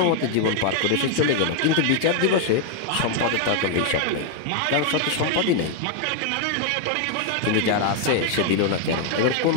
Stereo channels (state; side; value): different; both; correlation 0.00